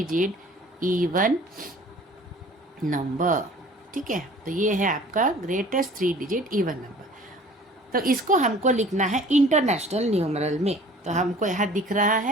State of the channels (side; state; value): both; normal; correlation 0.48